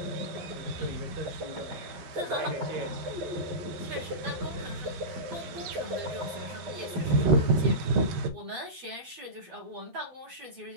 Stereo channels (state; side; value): late; left; 12 ms